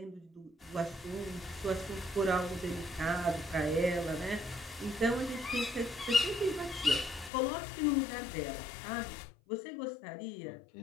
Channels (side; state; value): right; drops out; at 7.3 s